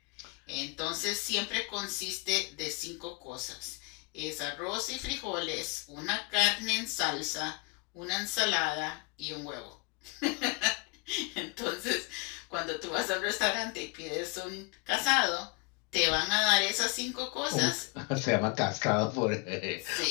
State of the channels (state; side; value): quieter; right; 28.4 dB